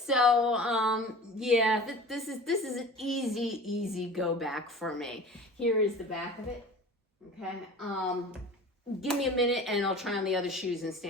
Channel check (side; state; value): both; normal; correlation 0.39